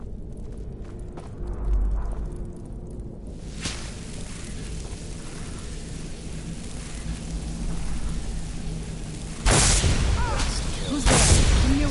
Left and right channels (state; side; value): identical; both; correlation 1.00